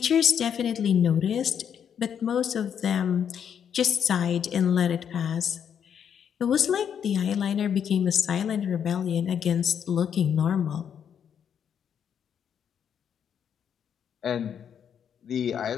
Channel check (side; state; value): right; quieter; 8.2 dB